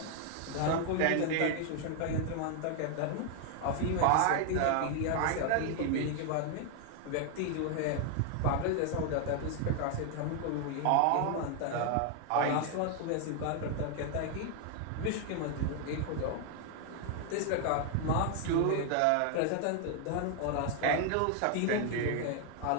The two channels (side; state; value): both; different; correlation 0.00